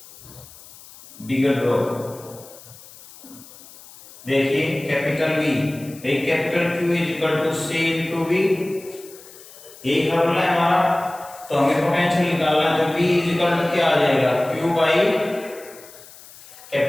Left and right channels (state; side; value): noise; left; hiss, 20 dB below the sound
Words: बिगर ड्रॉप। देखिए कैपिटल V एक capital Q is equal to C into V, यही फॉर्मूला है हमारा। तो हमें पोटेंशियल निकालना है, तो V इज इक्वल टू क्या आ जाएगा Q by